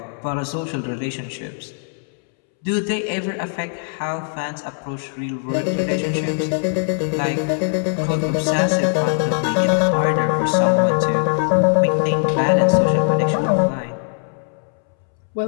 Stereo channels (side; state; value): right; silent; 64 dB below the other